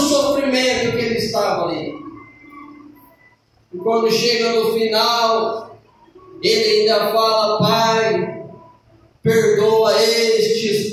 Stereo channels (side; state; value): both; identical; correlation 1.00